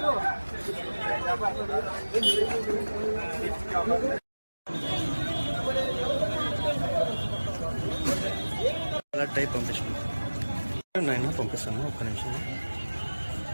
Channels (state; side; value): inverted; both; correlation -1.00